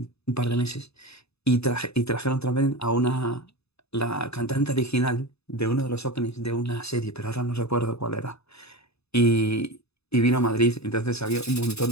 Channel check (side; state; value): right; late; 0.79 ms